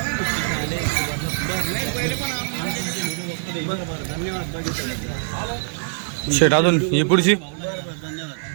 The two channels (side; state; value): left; silent; digital silence